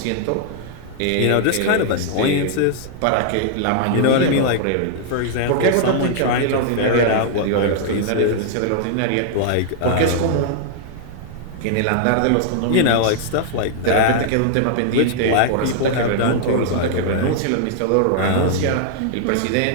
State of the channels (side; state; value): both; different; correlation -0.01